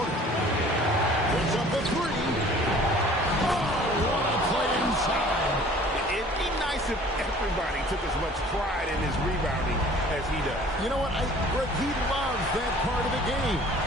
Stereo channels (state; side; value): normal; both; correlation 0.50